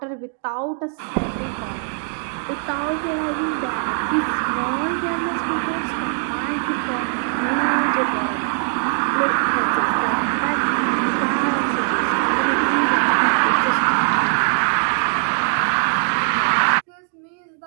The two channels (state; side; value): silent; left; 58 dB below the other